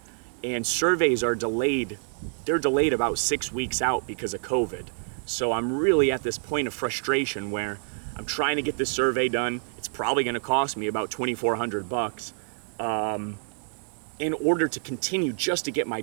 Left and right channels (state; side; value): silent; left; 60 dB below the other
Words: and surveys are delayed. They're delayed about 6 weeks out because of COVID. So I'm really at this point of frustration where I'm trying to get this survey done. It's probably gonna cost me about $2,400 in order to continue just to get my